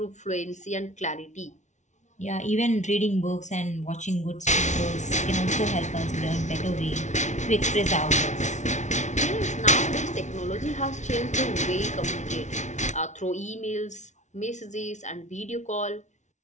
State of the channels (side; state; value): right; late; 0.35 ms